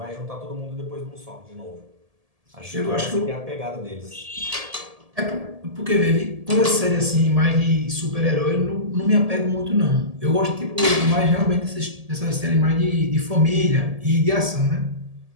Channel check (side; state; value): left; late; 1.7 ms